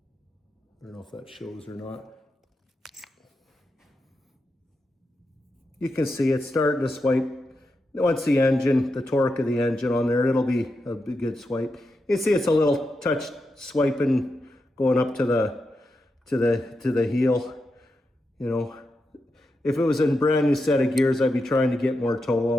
don't know if that shows or not. You can see it's starting to swipe. Once the engine, the torque of the engine on there, it'll be a good swipe. You can see it's a little touch swiping going up to the heel. You know, if it was a brand new set of gears, I'd be trying to get more toe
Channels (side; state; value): both; normal; correlation 0.87